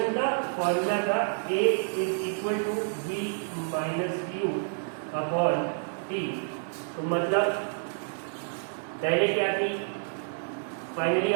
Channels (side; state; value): left; silent; digital silence